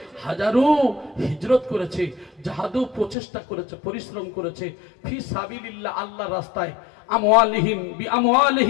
হাজারু হিজরত করেছে, জাহাদু প্রচেষ্টা করেছে, পরিশ্রম করেছে, ফি সাবিলিল্লাহ আল্লাহর রাস্তায়, আমওয়ালিহিম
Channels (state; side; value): drops out; right; at 3.2 s